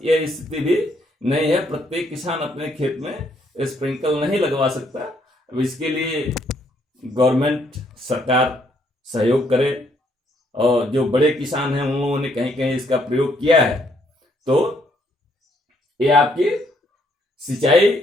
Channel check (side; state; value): both; normal; correlation 0.70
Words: यह स्थिति भी नहीं है, प्रत्येक किसान अपने खेत में स्प्रिंकल नहीं लगवा सकता। अब इसके लिए गवर्नमेंट, सरकार सहयोग करे, और जो बड़े किसान हैं उन लोगों ने कहीं कहीं इसका प्रयोग किया है। तो ये आपकी सिंचाई